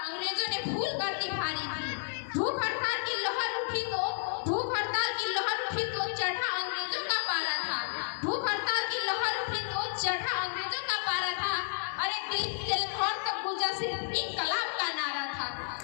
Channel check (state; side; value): silent; right; digital silence